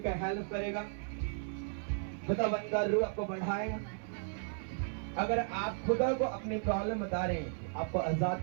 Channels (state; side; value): silent; left; 54 dB below the other